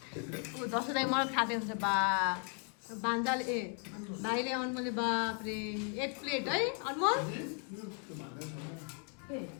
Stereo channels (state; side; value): quieter; right; 40.0 dB